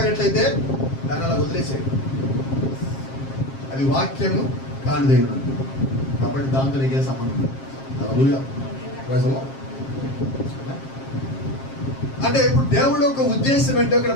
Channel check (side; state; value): right; late; 7.5 ms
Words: దాన్ని అలా వదిలేసేయండి. అది వాక్యము కానిదై ఉన్నది కాబట్టి దాంతో నీకే సంబంధం లేదు. హల్లెలూయా. Praise the Lord. అంటే ఇప్పుడు దేవుడి యొక్క ఉద్దేశం ఏంటో ఇక్కడ